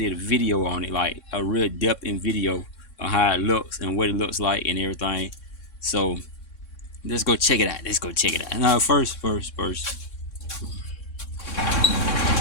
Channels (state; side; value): late; right; 3.6 ms